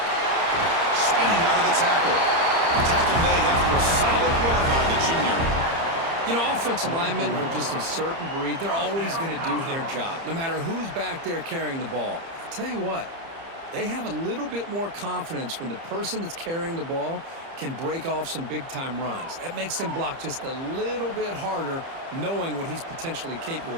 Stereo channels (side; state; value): left; late; 30 ms